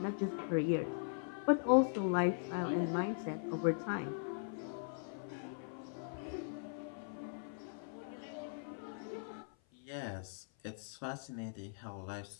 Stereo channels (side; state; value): right; silent; 51 dB below the other